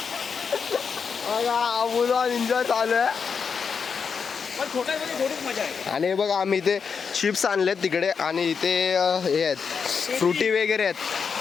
बघा मुलं एन्जॉय चालू आहे. पण छोट्यामध्ये थोडीच मजा आहे. आणि बघा आम्ही इथे चिप्स आणलेत तिकडे, आणि इथे हे आहेत फ्रुटी वगैरे आहेत,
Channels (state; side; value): quieter; right; 6.0 dB